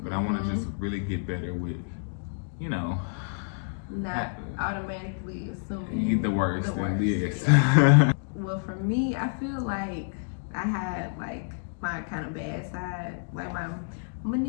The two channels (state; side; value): silent; right; digital silence